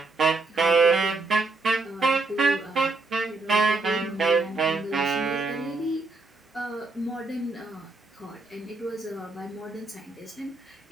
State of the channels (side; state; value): left; quieter; 3.4 dB